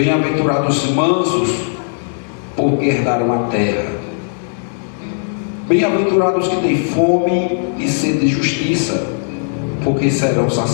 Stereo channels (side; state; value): right; silent; digital silence